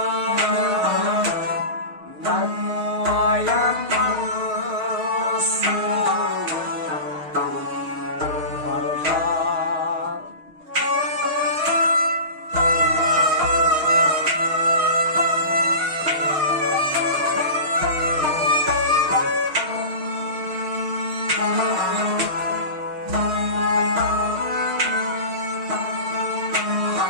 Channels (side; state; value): left; late; 6.4 ms